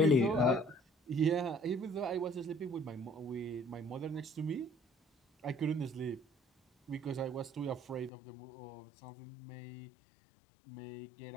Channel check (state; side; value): drops out; right; at 8.1 s